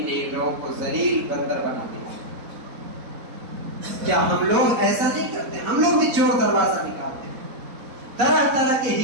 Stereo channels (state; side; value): late; left; 4.1 ms